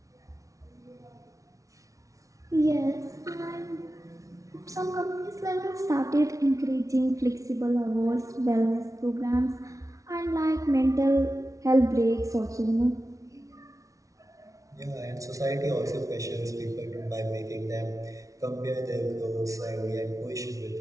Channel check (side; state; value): left; late; 0.16 ms